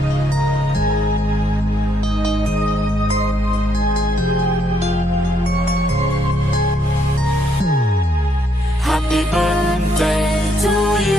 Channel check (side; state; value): both; normal; correlation 0.73